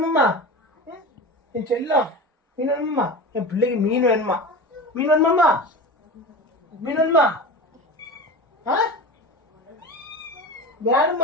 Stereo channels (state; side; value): normal; both; correlation 0.30